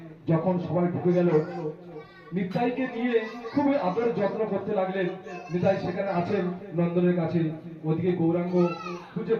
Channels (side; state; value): both; identical; correlation 1.00